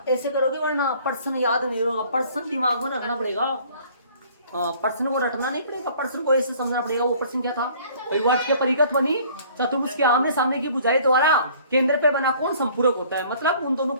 ऐसे करोगे, वरना प्रश्न याद नहीं होगा, प्रश्न दिमाग में रखना पड़ेगा, प्रश्न को रटना नहीं पड़ेगा, प्रश्न को ऐसे समझना पड़ेगा। वो प्रश्न क्या था, वर्त के परिगत बनी चतुर्भुज के आमने सामने की भुजाएं द्वारा केंद्र पे बना कोण संपूरक होता है, मतलब उन दोनों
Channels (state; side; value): inverted; both; correlation -0.54